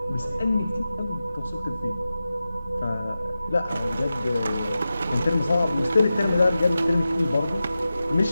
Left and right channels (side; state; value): both; inverted; correlation -0.93